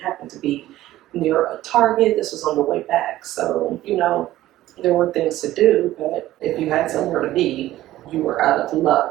to be near a Target. This was on the way back. So, there were things to do, but if you had somewhere to be, you were out of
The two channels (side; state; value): left; quieter; 15.0 dB